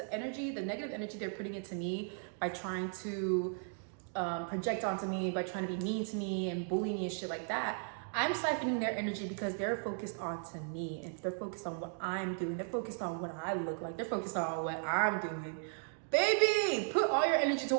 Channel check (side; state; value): left; silent; 54 dB below the other